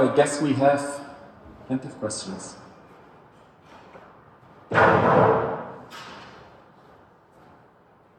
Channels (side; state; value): both; identical; correlation 1.00